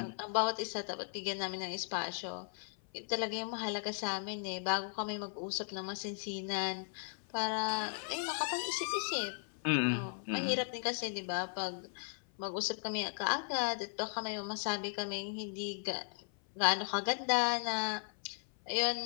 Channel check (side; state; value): right; silent; 53 dB below the other